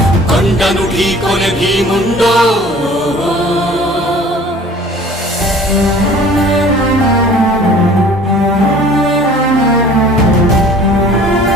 కొండను ఢీకొనే భీముండో.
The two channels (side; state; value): both; normal; correlation 0.48